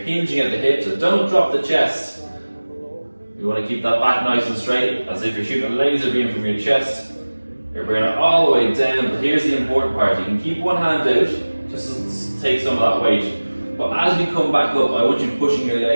at the hip, so don't drop the chest. You want to keep that back nice and straight, as if you're shooting a laser beam from your chest. You're bringing it all the way down, but here's the important part. You can keep one hand out, just to take some of that weight. But as we come back up, I want you pushing your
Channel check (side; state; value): both; inverted; correlation -1.00